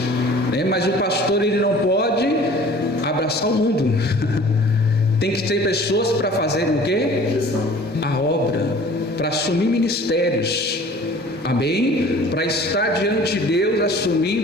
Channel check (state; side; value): normal; both; correlation 0.48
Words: né? Mas o pastor, ele não pode abraçar o mundo. Tem que ter pessoas para fazer o quê? A obra, para assumir ministérios, amém? Para estar diante de Deus